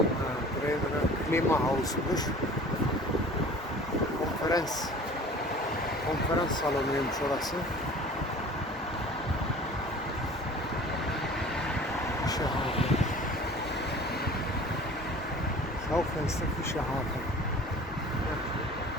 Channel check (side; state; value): both; normal; correlation 0.44